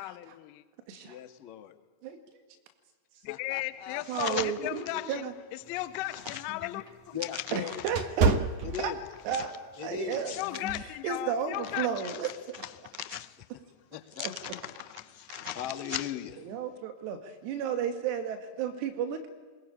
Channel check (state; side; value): late; left; 9.6 ms